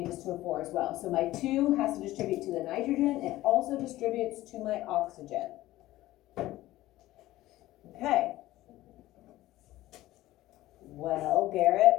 to a 4 as well. So my 2 has to distribute to the nitrogen. It also distributes to my oxygen. Okay. Well, Garrett,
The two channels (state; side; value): quieter; right; 16.3 dB